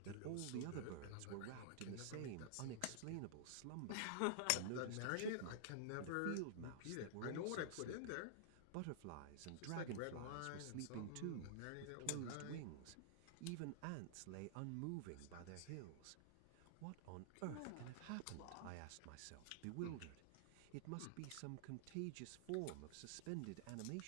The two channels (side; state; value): both; different; correlation -0.01